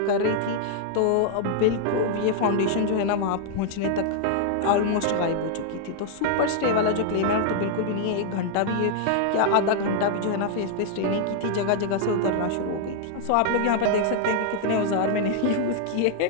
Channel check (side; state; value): both; different; correlation 0.00